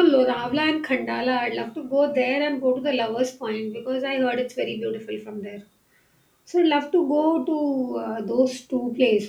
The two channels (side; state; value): both; identical; correlation 1.00